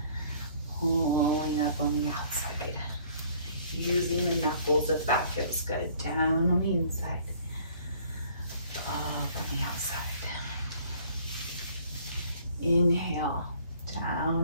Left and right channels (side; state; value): both; inverted; correlation -0.57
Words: Pulling up on the outside. Using the knuckles if that feels good. Down on the inside. Up on the outside. Inhale,